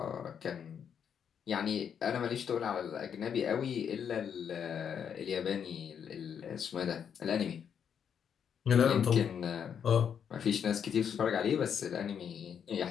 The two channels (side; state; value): right; quieter; 7.9 dB